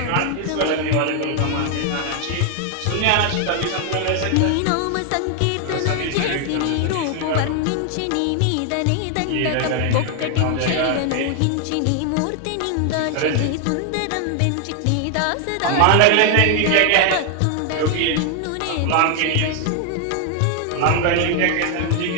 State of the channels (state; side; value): different; both; correlation 0.00